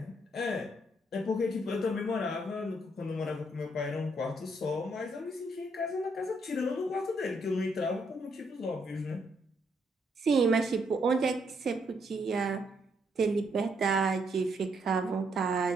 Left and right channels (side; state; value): both; normal; correlation 0.74